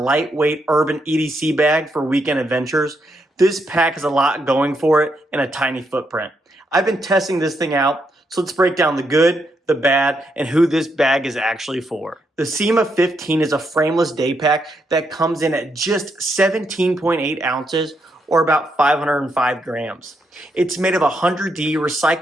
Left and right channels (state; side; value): normal; both; correlation 0.79